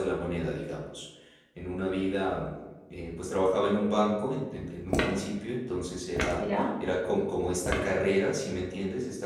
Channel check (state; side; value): identical; both; correlation 1.00